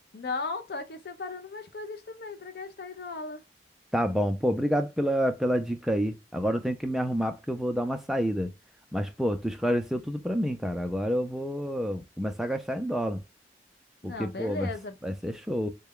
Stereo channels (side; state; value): both; normal; correlation 0.83